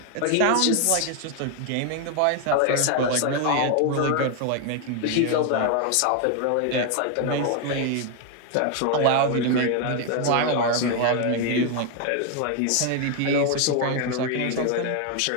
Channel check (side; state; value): both; different; correlation 0.01